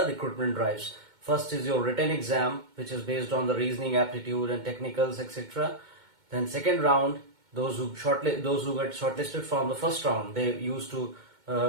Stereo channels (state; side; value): late; left; 2.2 ms